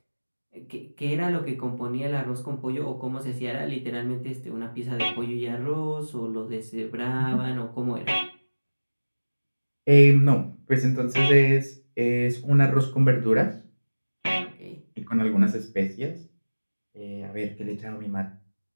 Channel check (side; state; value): both; inverted; correlation -1.00